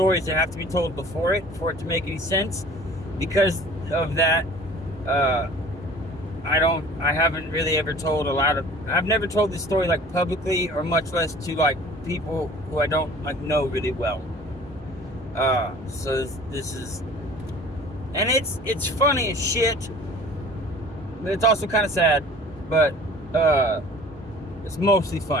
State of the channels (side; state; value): both; normal; correlation 0.47